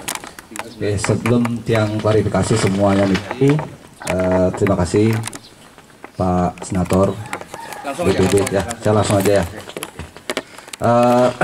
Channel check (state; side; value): identical; both; correlation 1.00